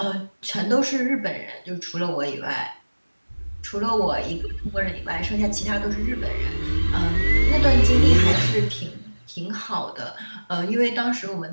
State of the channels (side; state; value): both; inverted; correlation -1.00